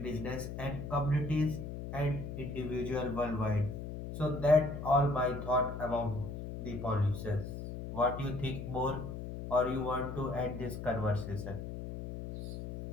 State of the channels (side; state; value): left; noise; hum, 7 dB below the sound